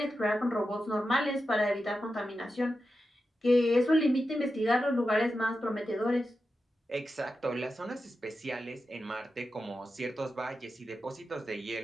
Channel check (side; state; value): both; normal; correlation 0.90